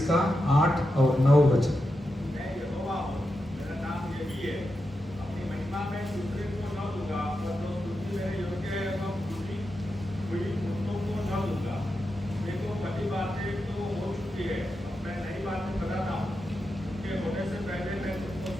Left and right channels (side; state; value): both; normal; correlation 0.88